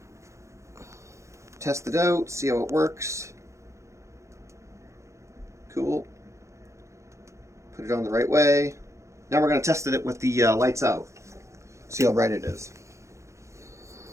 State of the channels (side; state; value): left; late; 0.14 ms